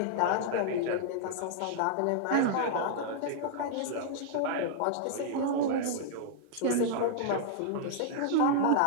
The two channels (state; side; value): different; both; correlation -0.01